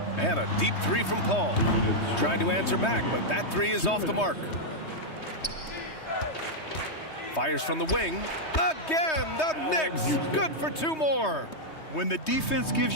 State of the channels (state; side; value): late; right; 3.2 ms